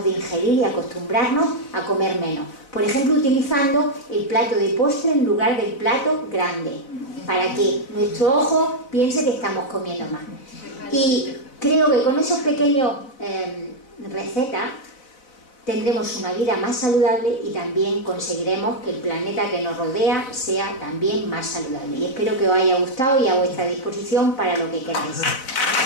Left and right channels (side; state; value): right; late; 4.0 ms